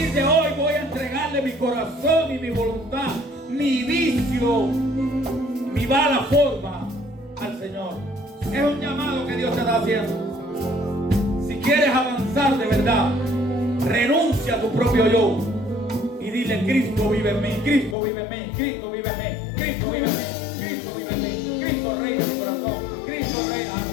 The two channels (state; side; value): drops out; right; at 17.9 s